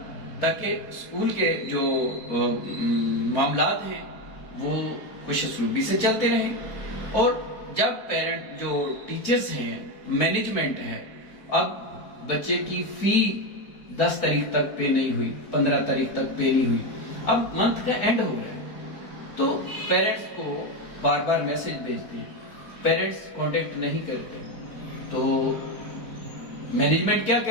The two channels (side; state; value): right; late; 4.4 ms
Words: تاکہ اسکول کے جو معاملات ہیں وہ خوش اسلوبی سے چلتے رہیں۔ اور جب پیرنٹ جو ٹیچرز ہیں، مینجمنٹ ہے، اب بچے کی فی 10 تاریخ تک پے نہیں ہوئی، 15 تاریخ تک پے نہیں ہوئی، اب منتھ کا اینڈ ہو رہا ہے، تو پیرنٹس کو بار بار میسج بھیجتے ہیں، پیرنٹس کانٹیکٹ نہیں کرتے، تو مینجمنٹ کیا